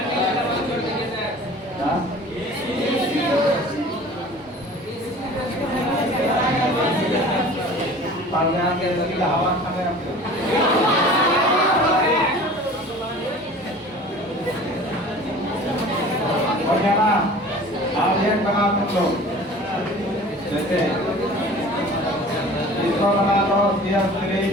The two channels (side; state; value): both; normal; correlation 0.43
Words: हवा खाने हो गया ना? आप एक बना तुम लोग। जैसे इसको बना लो CH3